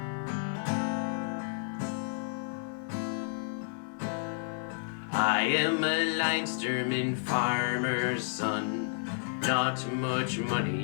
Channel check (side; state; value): right; silent; digital silence